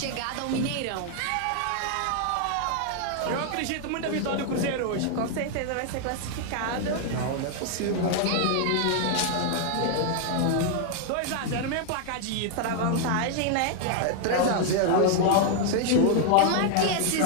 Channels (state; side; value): different; both; correlation 0.00